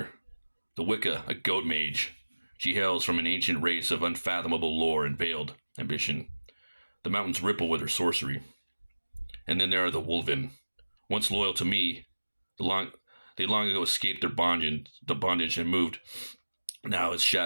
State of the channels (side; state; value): both; inverted; correlation -1.00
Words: The Wicca, a goat mage. She hails from an ancient race of unfathomable lore and veiled ambition. The mountains ripple with her sorcery. And then there are the Wolven. Once loyal to me, they long ago escaped their bondage and moved now as